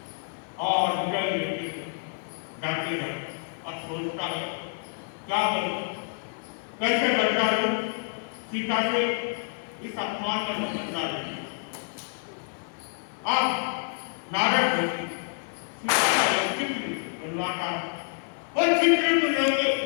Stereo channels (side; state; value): right; silent; 59 dB below the other